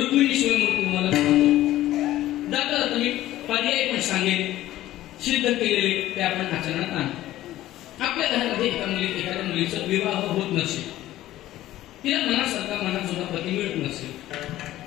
शिवमूर्ती तुम्हाला सांगतो. दादा तुम्ही पर्याय पण सांगेल सिद्ध केलेले ते आपण आचरणात आणतो. आपल्या घरामध्ये एखाद्या मुलीचा विवाह होत नसेल, तिला मनासारखा मनाजोगा पती मिळत नसेल,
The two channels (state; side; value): quieter; right; 14.7 dB